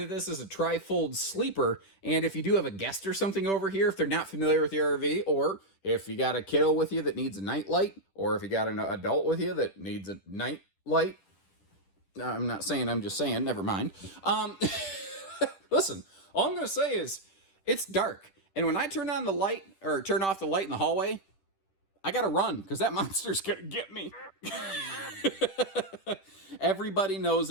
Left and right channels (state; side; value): late; right; 10 ms